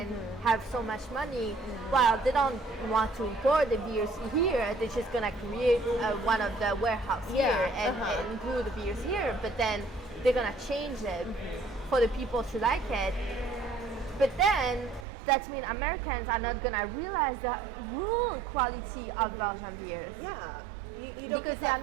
have so much money, well, they don't want to import the beers here. They're just gonna create one of the warehouse here and brew the beers here. But then they're gonna change it for the people to like it. But then that means Americans are not gonna realize the real quality of Belgian beers. Yeah. You don't get that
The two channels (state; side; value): drops out; left; at 15.1 s